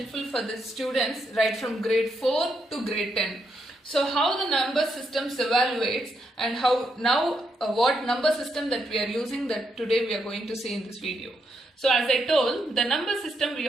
for the students right from grade 4 to grade 10. So how the number systems evaluates and how now what number system that we are using that today we are going to see in this video. So as I told, the number system we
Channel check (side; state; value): both; normal; correlation 0.80